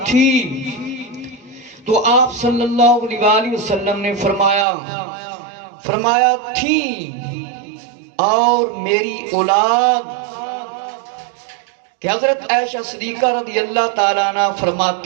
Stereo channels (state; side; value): drops out; left; at 4.7 s